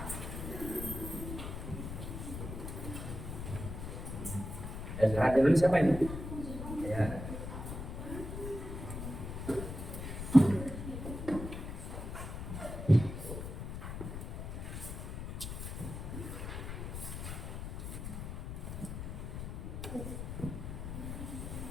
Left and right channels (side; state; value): left; noise; rumble, 6 dB below the sound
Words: Ya, sekarang dulu siapa ini? Ya.